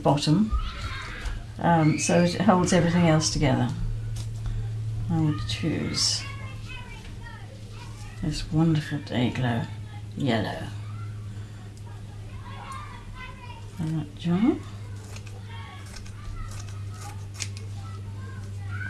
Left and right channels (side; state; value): both; identical; correlation 1.00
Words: so it holds everything else together. I will choose this wonderful Day-Glo yellow. And that jar.